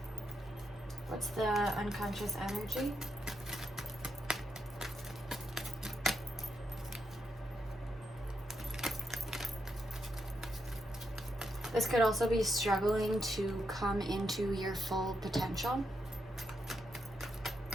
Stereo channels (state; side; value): normal; both; correlation 0.82